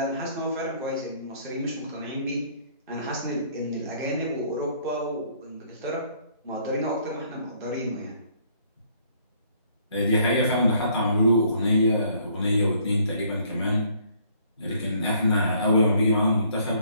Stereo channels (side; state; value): both; inverted; correlation -0.63